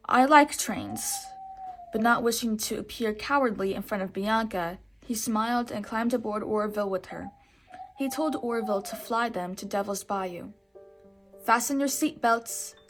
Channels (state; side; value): identical; both; correlation 1.00